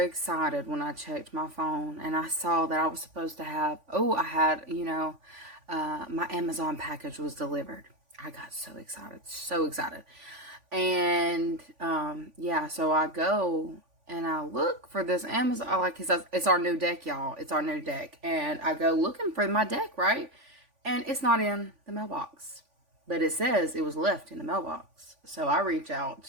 when I checked my phone and I saw that I was supposed to have, my Amazon package was delivered. I got so excited, so excited. And, so I go and I look for this Amazon, it's our new deck, y'all. It's our new deck. And I go looking for my deck, right? And it's not in the mailbox, but it says it was left in the mailbox. So I reach out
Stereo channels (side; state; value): left; late; 3.5 ms